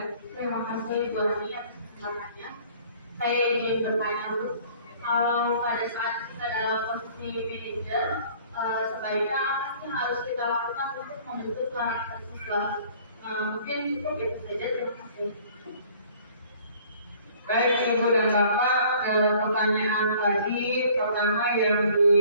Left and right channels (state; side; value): inverted; both; correlation -0.54